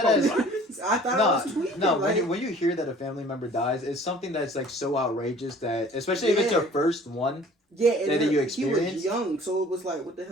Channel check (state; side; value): normal; both; correlation 0.50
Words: I thought I was tweaking. No, when you hear that a family member dies, it's something that's like so outrageous that, especially if it's your first one. Yeah, and that you experience. He was young, so it was like, what the